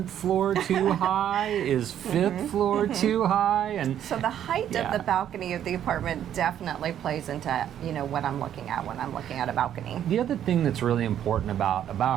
floor too high? Is 5th floor too high? And so the height of the balcony of the apartment definitely plays into what I'm looking at when I'm looking at a balcony. The other thing that's really important about a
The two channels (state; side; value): quieter; left; 10.3 dB